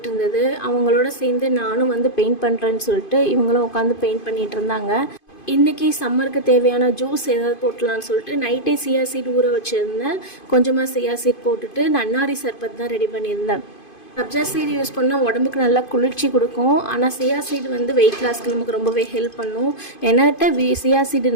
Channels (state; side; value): late; right; 2.5 ms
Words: இருந்தது. அவங்களோட சேர்ந்து நானும் பெயிண்ட் பண்ணுறேன்னு சொல்லிட்டு இவங்களும் உட்காந்து பெயிண்ட் பண்ணிகிட்டு இருந்தாங்க. இன்றைக்கி சம்மருக்கு தேவையான ஜூஸ் ஏதாவது போட்டலான்னு சொல்லிட்டு நைட்டே சியா சீட் ஊற வச்சுருந்தேன். கொஞ்சமாக சியா சீட் போட்டுட்டு நன்னாரி சர்பத் தான் ரெடி பண்ணியிருந்தேன். சப்ஜா சீடு யூஸ் பண்ணால் உடம்புக்கு நல்லா குளிர்ச்சி கொடுக்கும். ஆனால் சியா சீடு வெயிட் லாஸ்க்கு நமக்கு ரொம்பவே ஹெல்ப் பண்ணும். என்கிட்ட சியா சீடு